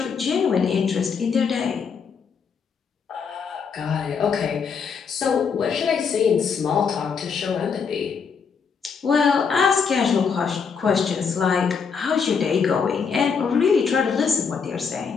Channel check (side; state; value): right; quieter; 6.0 dB